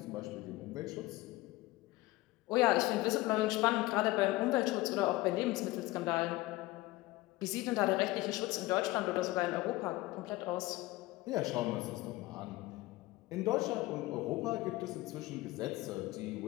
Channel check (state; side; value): quieter; right; 19.2 dB